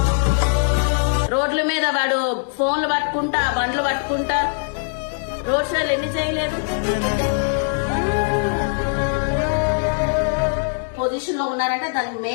రోడ్ల మీద వాడు ఫోన్లు పట్టుకుంటా, బండ్లు పట్టుకుంటా రోడ్ షోలు ఎన్ని చేయలేదు? పొజిషన్ లో ఉన్నారంటే దానికి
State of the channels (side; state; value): right; silent; digital silence